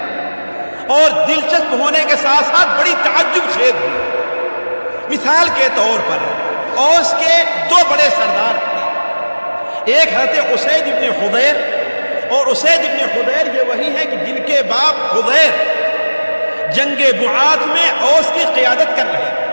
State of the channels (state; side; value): inverted; both; correlation -1.00